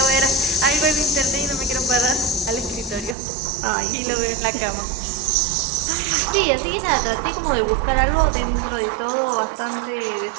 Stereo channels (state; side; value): drops out; left; at 3.2 s